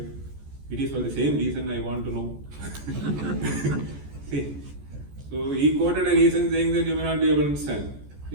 it is for the same reason I want to know. See, so he quoted a reason saying that you may not be able to understand.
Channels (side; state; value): left; late; 14 ms